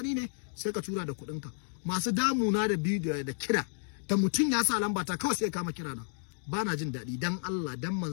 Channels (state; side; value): silent; right; digital silence